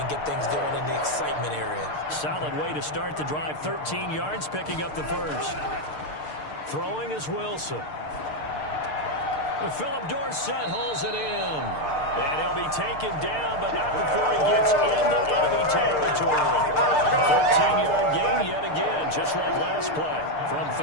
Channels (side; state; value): right; late; 6.6 ms